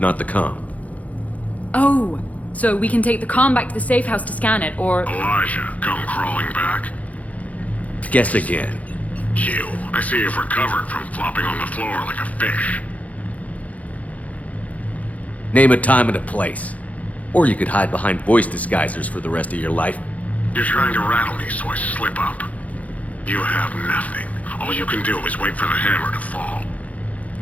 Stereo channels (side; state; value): right; late; 0.070 ms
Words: the comm. Oh, so we can take the comm back to the safe house to scan it, or... Elijah, come crawling back. Guess again. You. I see you've recovered from flopping on the floor like a fish. Name a time and a place. Or you could hide behind voice disguisers for the rest of your life. You're trying to rattle me so I slip up. You have nothing. All you can do is wait for the hammer to fall.